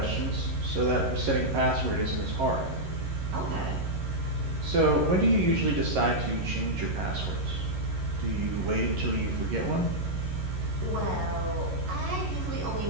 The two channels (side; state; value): left; late; 11 ms